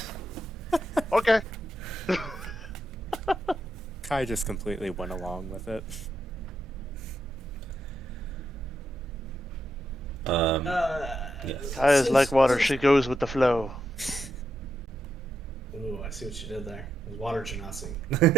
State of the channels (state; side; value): normal; both; correlation 0.81